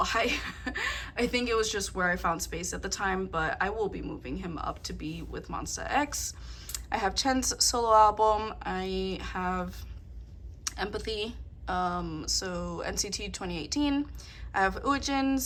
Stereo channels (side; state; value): both; identical; correlation 1.00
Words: I think it was just where I found space at the time, but I will be moving him up to be with Monsta X. I have Chen's solo album. I have Empathy, so NCT 2018. I have